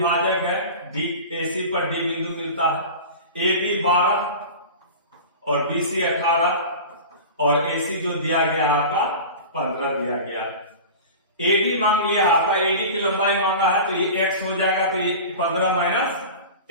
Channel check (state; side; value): inverted; both; correlation -0.33